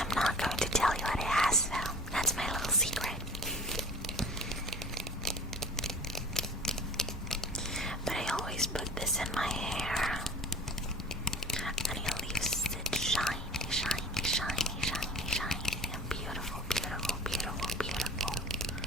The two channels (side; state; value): both; normal; correlation 0.43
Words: am not going to tell you what it has though. That's my little secret. But I always put this in my hair, and it leaves it shiny, shiny, shiny, shiny, shiny, and beautiful, beautiful, beautiful, beautiful.